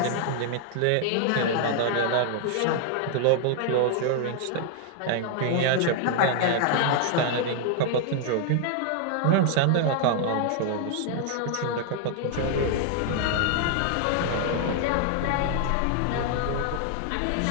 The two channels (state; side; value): different; both; correlation 0.00